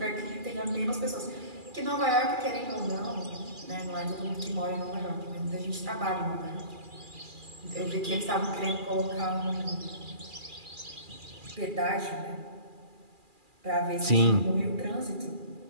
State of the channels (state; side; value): late; left; 2.4 ms